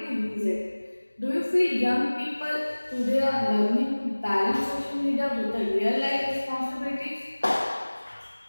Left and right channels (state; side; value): inverted; both; correlation -1.00